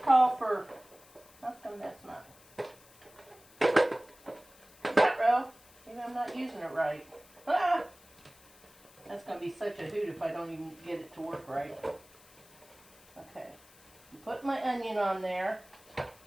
call for, how come that's not? Maybe I'm not using it right. Ah! That's going to be such a hoot if I don't even get it to work right. Okay. Put my onion on there.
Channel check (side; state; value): left; noise; hiss, 25 dB below the sound